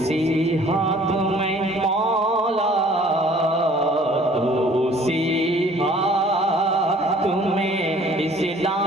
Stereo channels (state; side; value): normal; both; correlation 0.54